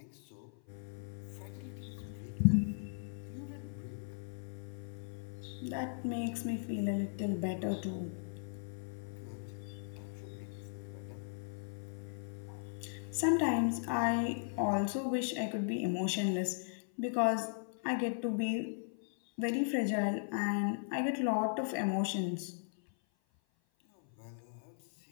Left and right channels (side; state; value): right; silent; 53 dB below the other